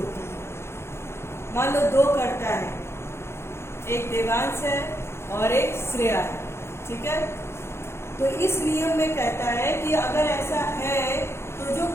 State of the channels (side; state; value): right; late; 0.12 ms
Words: है। मान लो दो कर्ता है, एक देवांश है और एक श्रेया है, ठीक है। तो इस नियम में कहता है कि अगर ऐसा है तो जो